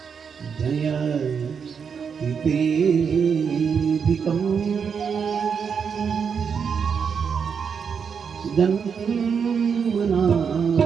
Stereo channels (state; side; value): quieter; left; 6.5 dB